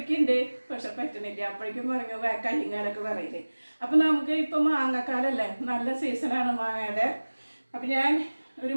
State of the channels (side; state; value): both; inverted; correlation -1.00